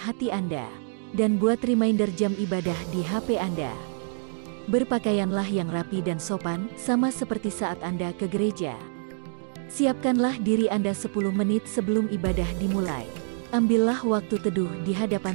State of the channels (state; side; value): silent; left; digital silence